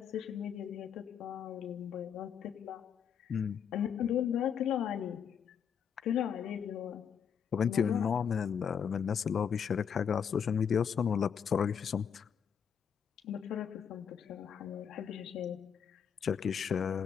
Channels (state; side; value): quieter; right; 7.5 dB